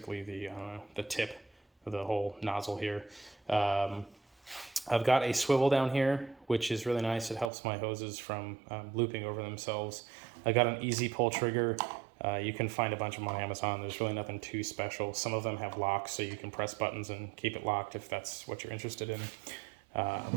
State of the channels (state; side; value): drops out; left; at 7.5 s